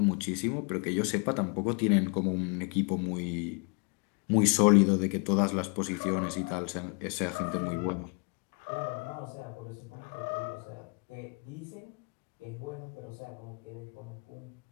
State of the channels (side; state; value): right; quieter; 35.1 dB